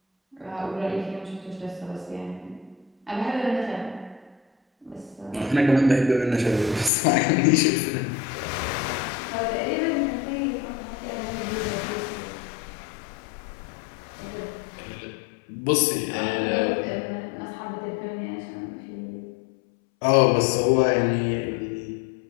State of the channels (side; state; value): right; drops out; at 6.9 s